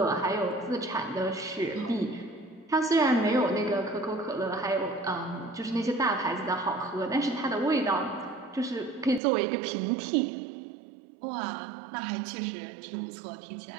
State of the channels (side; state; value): left; drops out; at 9.2 s